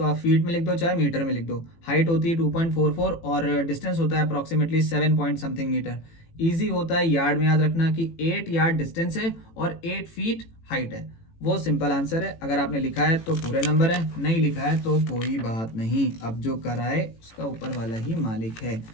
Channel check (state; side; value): late; right; 18 ms